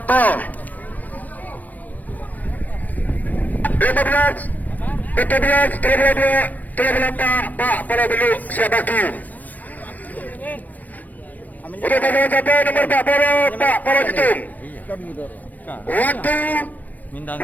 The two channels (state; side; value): late; right; 0.081 ms